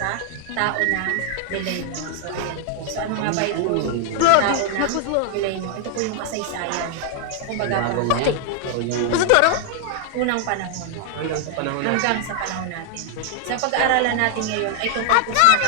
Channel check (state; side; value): different; both; correlation 0.00